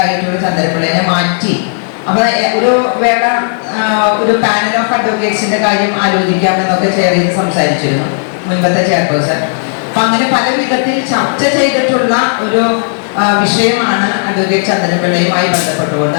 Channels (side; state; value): right; silent; digital silence